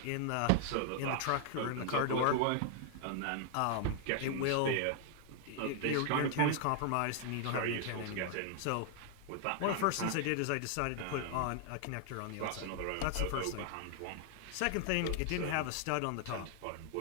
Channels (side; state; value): both; different; correlation 0.00